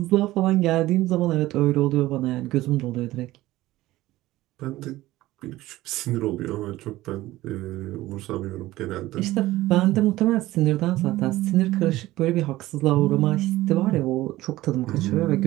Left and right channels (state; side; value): quieter; left; 16.8 dB